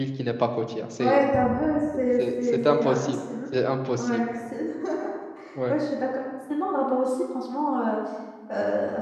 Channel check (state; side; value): identical; both; correlation 1.00